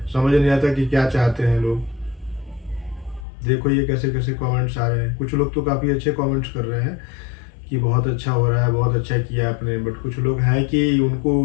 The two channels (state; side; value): drops out; right; at 3.2 s